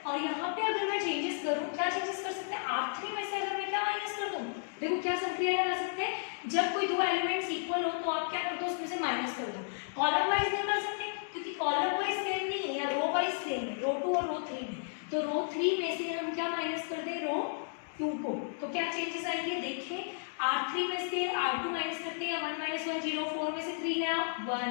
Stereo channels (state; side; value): silent; right; digital silence